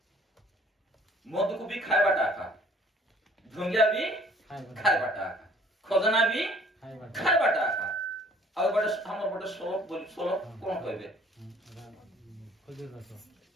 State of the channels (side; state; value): both; normal; correlation 0.55